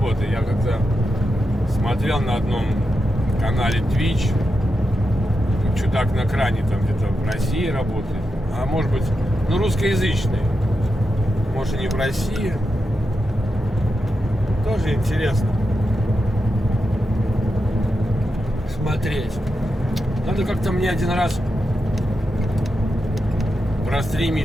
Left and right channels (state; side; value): normal; both; correlation 0.88